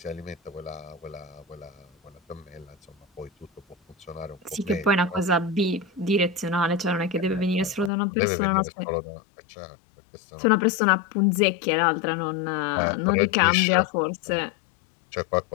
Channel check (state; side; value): drops out; right; at 7.9 s